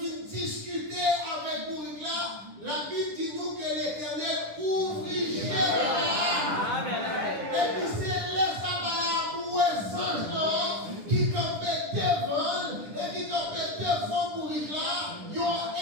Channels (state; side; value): late; left; 10 ms